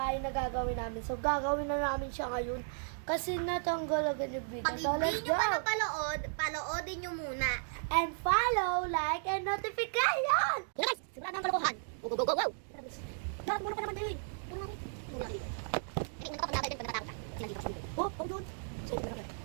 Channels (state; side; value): silent; left; digital silence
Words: na gagawin namin. So gagawin na namin siya ngayon. Kasi natanggal agad yung video. Pag So let's hindi nyo go! pa napanood, panoodin nyo muna. And follow, like, and notification! Guys, sigurado ang kalokohan. Go, go, go, go, go! Lahat muna pa naman din. Puro namin. Puro namin. Hindi mo kapag natin pag natatakot ka. Kasi nandito ka sa video. Oh, oh, dude! So,